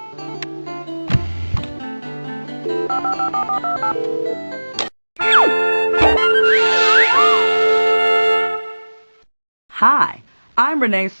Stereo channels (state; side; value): inverted; both; correlation -1.00